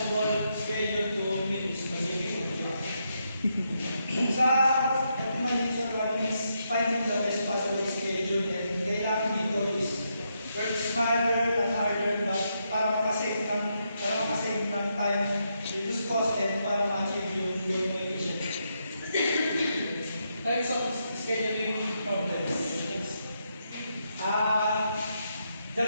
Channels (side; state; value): both; inverted; correlation -0.81